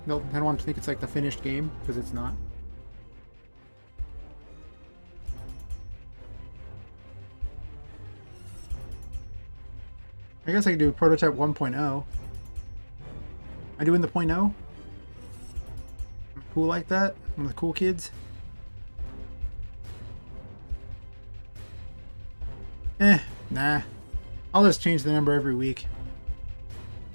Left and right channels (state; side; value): inverted; both; correlation -1.00